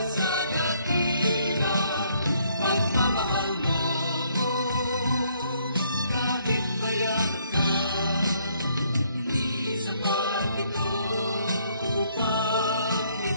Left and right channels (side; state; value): both; inverted; correlation -0.67